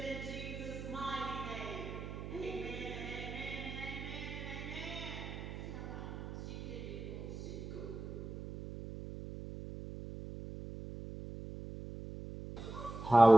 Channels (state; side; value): noise; right; hum, 8 dB below the sound